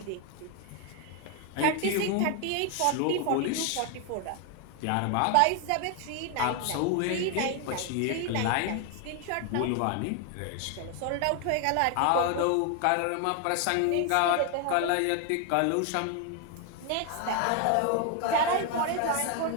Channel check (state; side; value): different; both; correlation 0.01